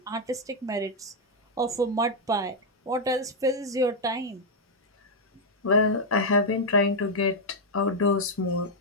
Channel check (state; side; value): normal; both; correlation -0.01